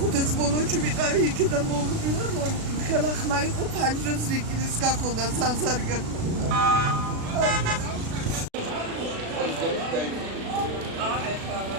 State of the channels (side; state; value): left; late; 36 ms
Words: ბოლოში ვიყავი იქიდან მოვიდივარ, ხელა ხმა იყო, ფანჯრებს რიკინის გაქონდა, სანსარი გაქონდა.